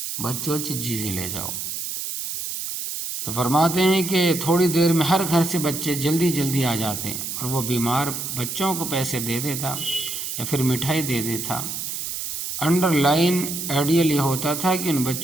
بچوں چجی سے لے جاؤ۔ تو فرماتے ہیں کہ تھوڑی دیر میں ہر گھر سے بچے جلدی آ جاتے ہیں، اور وہ بیمار بچوں کو پیسے دے دیتا یا پھر مٹھائی دے دیتا۔ انڈر لائن آئیڈیل یہ ہوتا تھا کہ ان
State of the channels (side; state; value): right; noise; hiss, 5 dB below the sound